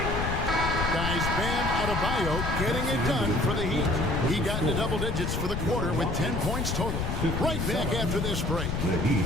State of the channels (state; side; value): noise; left; rumble, 2 dB below the sound